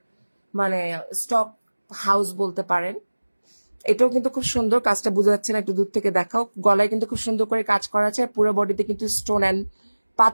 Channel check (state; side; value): inverted; both; correlation -1.00